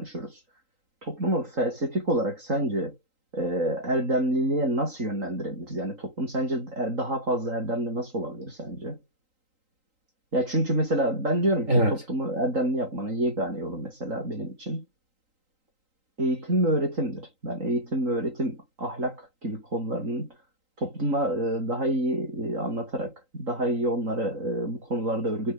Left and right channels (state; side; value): late; left; 3.8 ms